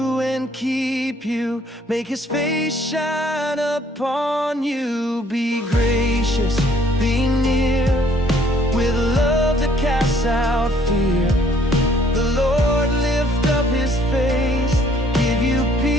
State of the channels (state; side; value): normal; both; correlation 0.62